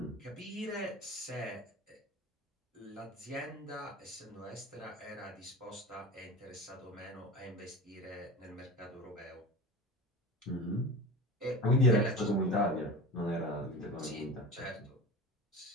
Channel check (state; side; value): normal; both; correlation 0.32